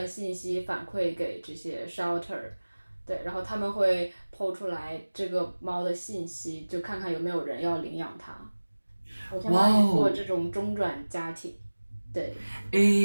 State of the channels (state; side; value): inverted; both; correlation -1.00